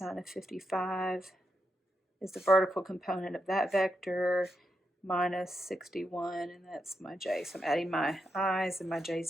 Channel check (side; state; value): both; normal; correlation 0.84